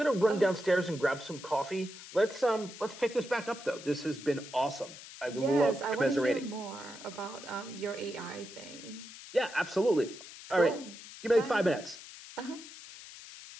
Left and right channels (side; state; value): left; noise; hiss, 15 dB below the sound